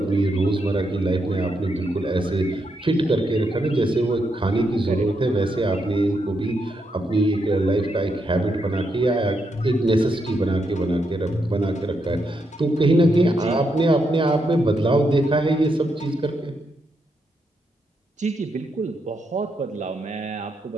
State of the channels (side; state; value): both; normal; correlation 0.81